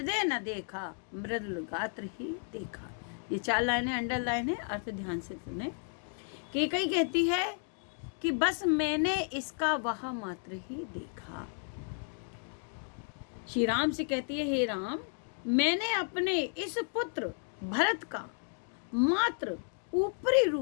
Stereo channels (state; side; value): silent; right; 56 dB below the other